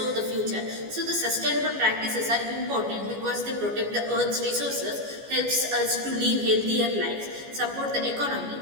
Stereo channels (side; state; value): left; late; 14 ms